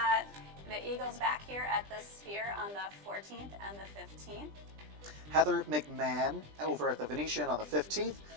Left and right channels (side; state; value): left; late; 20 ms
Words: the Eagles back here at the Sphere on the 14th and the 15th. Heather McMahon over at the Venetian on the 15th.